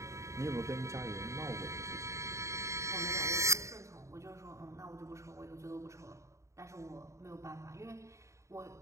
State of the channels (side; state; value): left; late; 0.14 ms